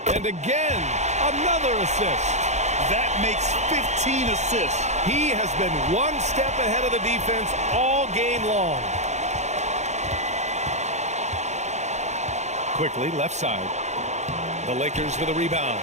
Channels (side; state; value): left; late; 0.33 ms